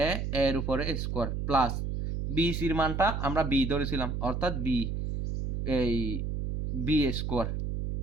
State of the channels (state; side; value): noise; right; hum, 2 dB below the sound